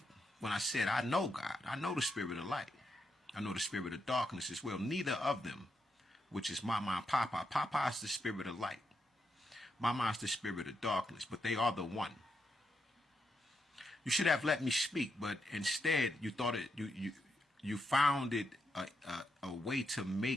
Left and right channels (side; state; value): both; normal; correlation 0.82